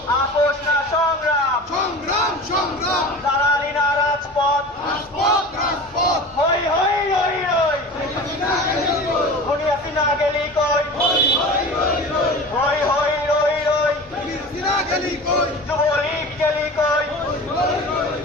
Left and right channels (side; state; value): both; normal; correlation 0.35